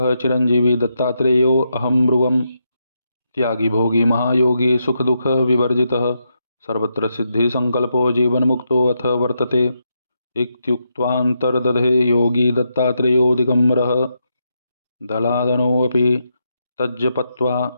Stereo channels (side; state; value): both; inverted; correlation -0.82